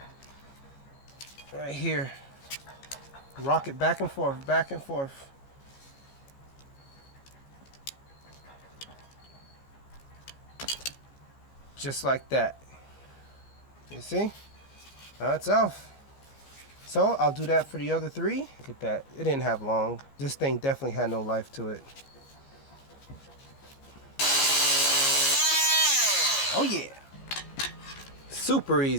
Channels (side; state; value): right; late; 15 ms